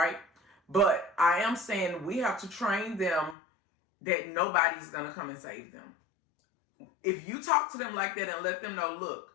But I am saying we have to train them that nobody's going to come and save them. If you talk to them like that and let them know,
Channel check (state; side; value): drops out; right; at 3.4 s